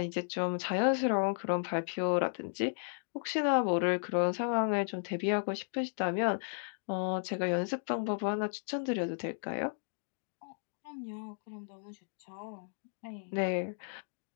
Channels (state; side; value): silent; right; digital silence